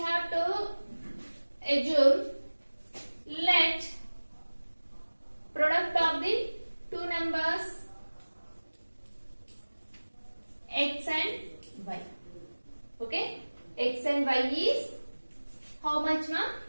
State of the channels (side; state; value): both; inverted; correlation -1.00